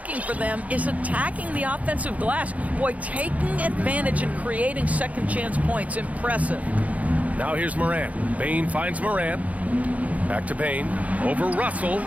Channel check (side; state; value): left; late; 0.070 ms